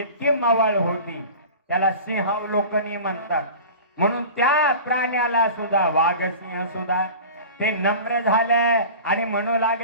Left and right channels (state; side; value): inverted; both; correlation -0.37